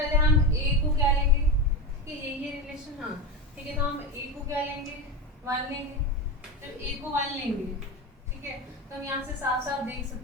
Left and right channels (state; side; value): normal; both; correlation 0.18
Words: हम ए को क्या लेंगे कि ये रिलेशन, हाँ ठीक है, तो हम ए को क्या लेंगे, 1 लेंगे। जब ए को 1 लेंगे, ठीक है, तो हम यहाँ से साफ साफ देख